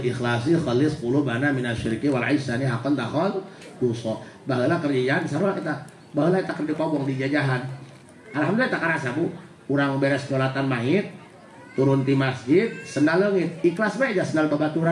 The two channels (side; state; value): both; identical; correlation 1.00